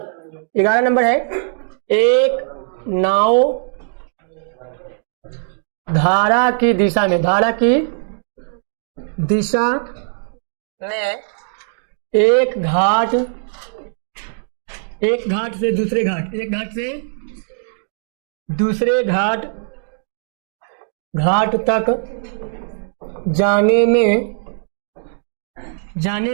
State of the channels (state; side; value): silent; left; digital silence